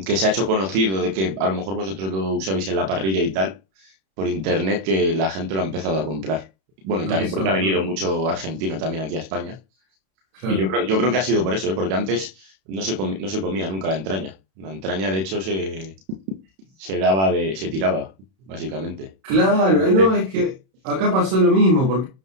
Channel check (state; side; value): late; left; 31 ms